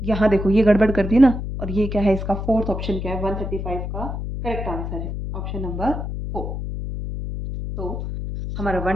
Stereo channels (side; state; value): left; noise; hum, 5 dB below the sound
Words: यहाँ देखो ये गड़बड़ कर दी ना, और ये क्या है, इसका फोर्थ ऑप्शन क्या है, 135 का करेक्ट आंसर है ऑप्शन नंबर 4। तो हमारा